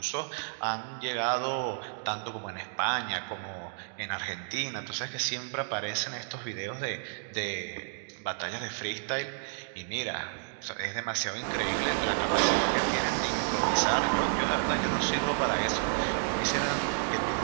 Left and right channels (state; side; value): silent; left; digital silence